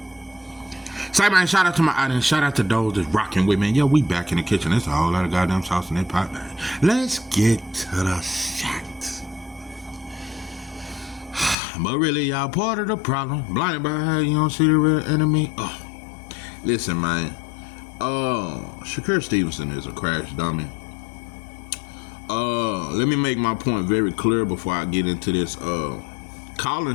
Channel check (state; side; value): drops out; right; at 11.6 s